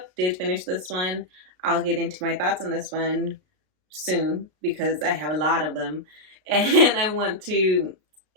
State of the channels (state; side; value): late; left; 33 ms